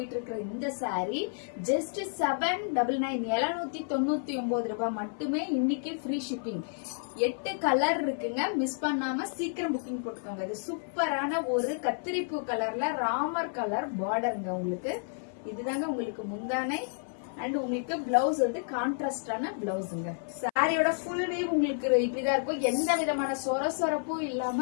இருக்கிற இந்த சாரி ஜஸ்ட் 799 ரூபாய் மட்டுமே. இன்னைக்கு ஃப்ரீ ஷிப்பிங். 8 கலர் இருக்குங்க, மிஸ் பண்ணாம சீக்கிரம் புக்கிங் போட்டுக்கோங்க. இது சூப்பரான ஒரு கத்திரிப்பூ கலர்ல ராமர் கலர் பார்டருங்க. உங்களுக்கு இதுதாங்க உங்களுக்கு முந்தானை அண்ட் உங்களுக்கு பிளவுஸ் வந்து கான்ட்ராஸ்டான பிளவுஸுங்க. சாரியோட ஃபுல் வீவ் உங்களுக்கு இப்படிதான் இருக்கும். எந்த விதமான சொரப்பும்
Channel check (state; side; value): silent; right; 57 dB below the other